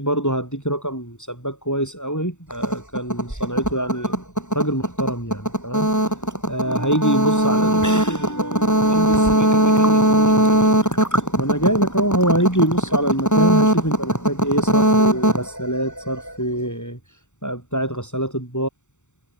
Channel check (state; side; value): late; right; 0.84 ms